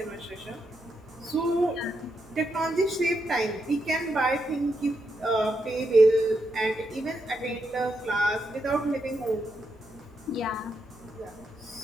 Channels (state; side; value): normal; both; correlation 0.82